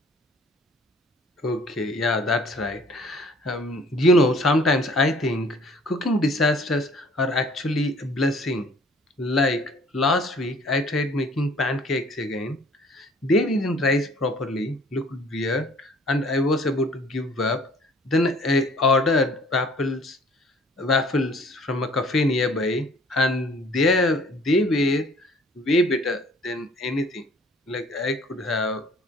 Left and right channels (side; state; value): both; normal; correlation 0.54